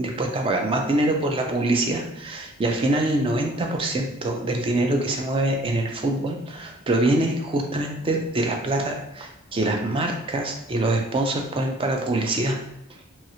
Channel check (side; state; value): both; normal; correlation 0.55